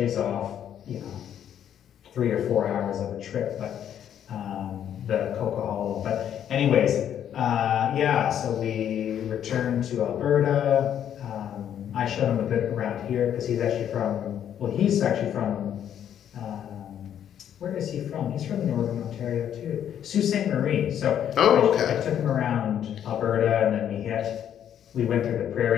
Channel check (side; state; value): right; quieter; 9.7 dB